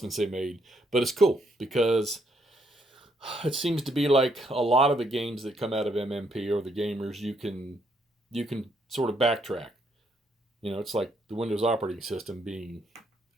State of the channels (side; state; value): both; normal; correlation 0.73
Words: they made. But it's cool because it seems to be like a lot of the games that come out of MMP or the gamers, you can sort of backtrack. It's like the Windows operating system being